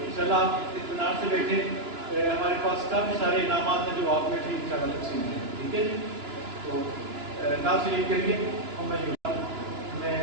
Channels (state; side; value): late; left; 2.9 ms